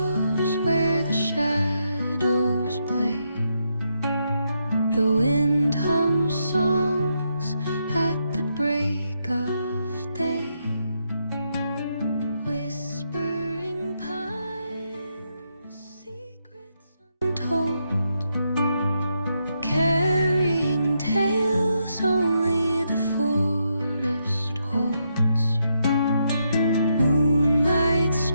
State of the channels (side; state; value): both; inverted; correlation -0.80